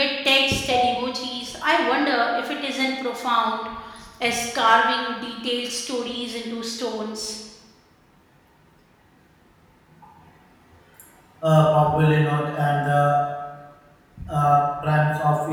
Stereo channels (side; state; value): both; identical; correlation 1.00